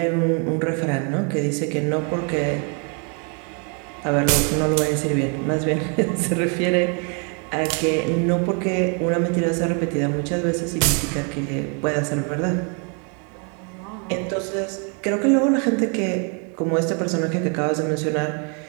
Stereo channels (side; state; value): left; quieter; 37.4 dB